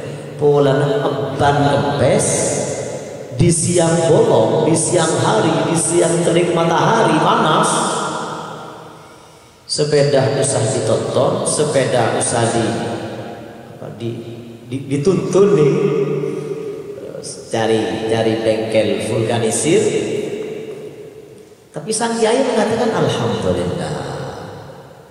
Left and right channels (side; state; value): both; identical; correlation 1.00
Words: polana ban kempes di siang bolong, di siang hari, di siang terik matahari panas? Sepeda usah ditonton, sepeda usah dituntun nih. Cari bengkel vulkanisir. Tapi sang kiai mengatakan alhamdulillah.